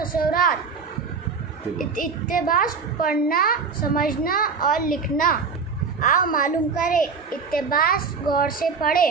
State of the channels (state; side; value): quieter; left; 5.2 dB